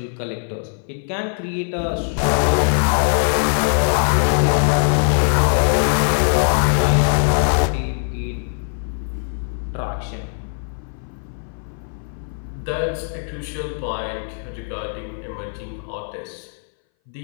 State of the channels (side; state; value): right; silent; 61 dB below the other